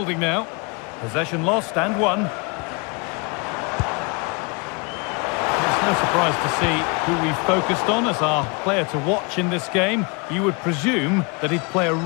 now. Possession lost and won. No surprise to see who we focused on as our player to watch in this game. You would presume that he'd play a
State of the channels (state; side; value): quieter; right; 30.9 dB